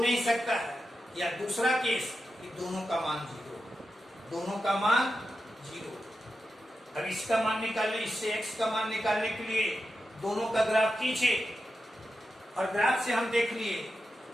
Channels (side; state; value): both; normal; correlation 0.90